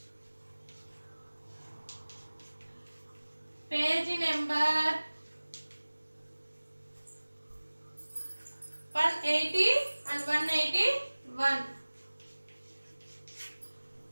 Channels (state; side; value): inverted; both; correlation -1.00